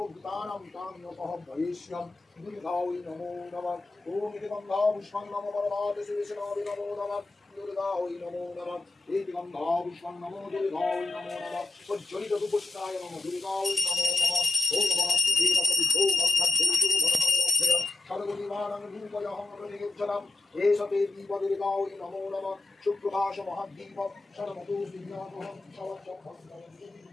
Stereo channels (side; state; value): right; quieter; 3.4 dB